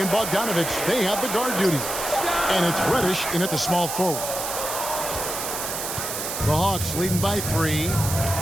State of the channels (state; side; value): noise; right; hiss, 4 dB below the sound